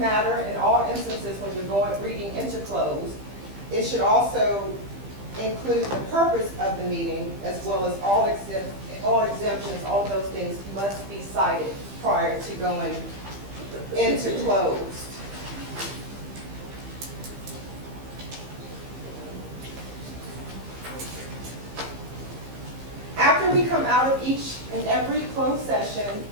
in all instances when you're reading into closed. It should also include the purpose of the meeting, as well as all exemptions. All of those things must be cited prior to going into closed. After we come out of each and every closed session,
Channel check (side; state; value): left; late; 15 ms